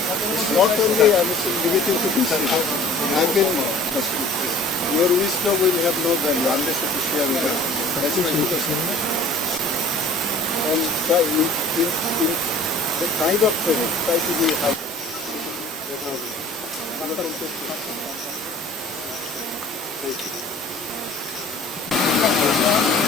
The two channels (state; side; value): normal; both; correlation 0.46